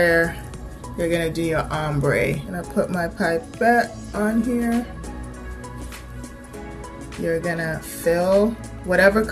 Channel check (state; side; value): identical; both; correlation 1.00